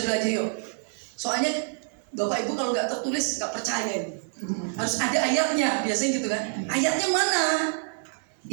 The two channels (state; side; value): silent; left; 60 dB below the other